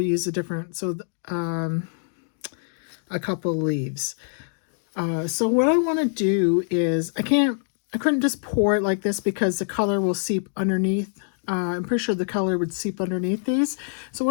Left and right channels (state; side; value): silent; right; digital silence